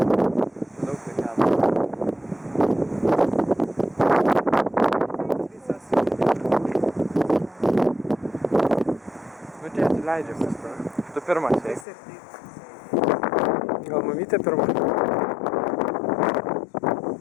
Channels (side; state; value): right; drops out; at 11.9 s